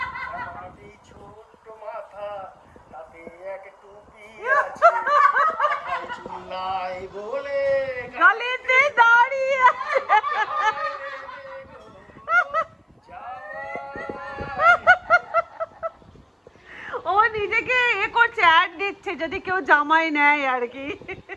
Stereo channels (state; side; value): identical; both; correlation 1.00